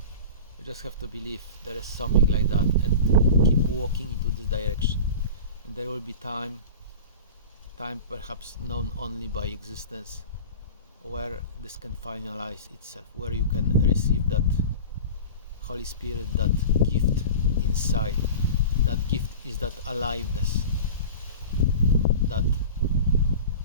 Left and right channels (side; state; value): both; inverted; correlation -0.34